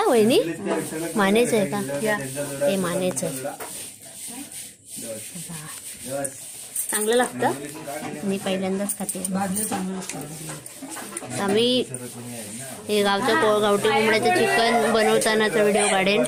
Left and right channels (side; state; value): both; identical; correlation 1.00